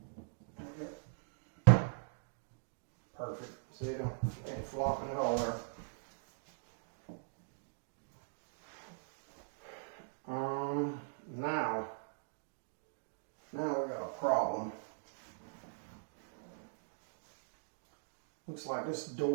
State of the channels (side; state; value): left; silent; digital silence